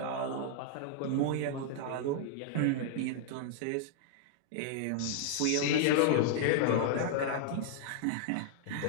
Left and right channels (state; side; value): different; both; correlation -0.01